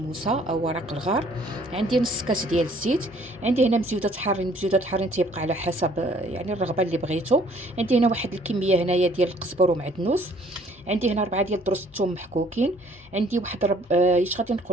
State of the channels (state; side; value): normal; both; correlation 0.59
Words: او ورق الغار. عندي نص كاس ديال الزيت. عندي هنا مزيودات حارين، مزيودات حارين تيبقى على حسب يعني الرغبه اللي بغيتو. عندي هنا واحد الكميه هنايا ديال القزبر ومعدنوس. عندي هنا 4 ديال دروس الثوم محكوكين. عندي واحد ايش غادي